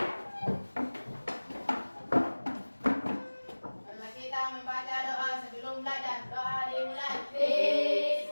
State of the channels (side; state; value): both; inverted; correlation -1.00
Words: Marilah kita membaca doa sebelum belajar. Doa dimulai.